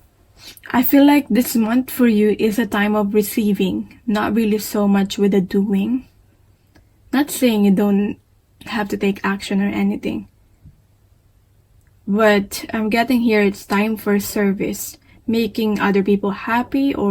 I feel like this month for you is a time of receiving, not really so much with the doing. Not saying you don't have to take action or anything. But I'm getting here it's time for service, making other people happy,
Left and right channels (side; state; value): both; identical; correlation 1.00